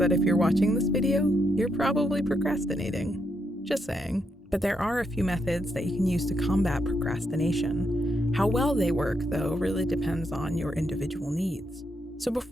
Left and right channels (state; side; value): normal; both; correlation 0.80